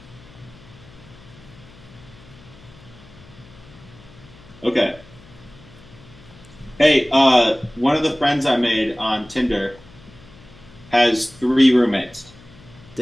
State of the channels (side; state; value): left; noise; hum, 22 dB below the sound